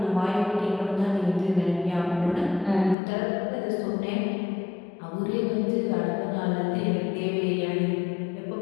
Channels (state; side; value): drops out; right; at 3.0 s